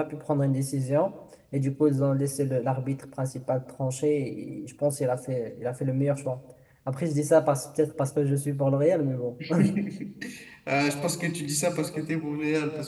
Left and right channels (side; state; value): both; identical; correlation 1.00